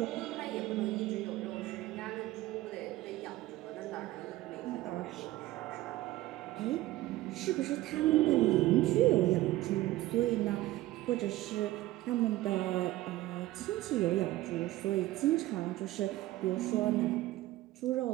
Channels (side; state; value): left; quieter; 16.7 dB